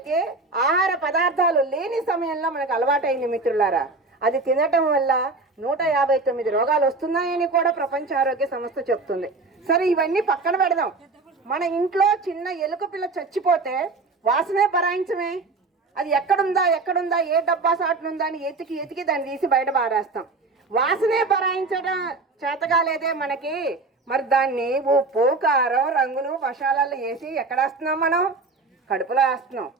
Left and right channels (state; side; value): quieter; left; 3.7 dB